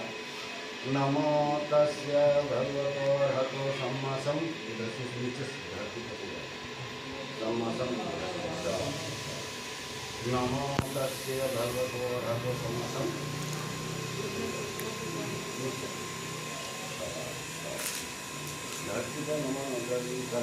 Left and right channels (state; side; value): identical; both; correlation 1.00